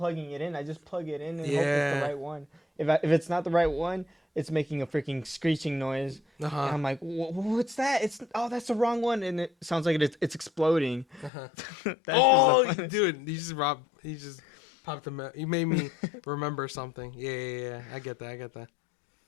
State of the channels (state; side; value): drops out; right; at 11.3 s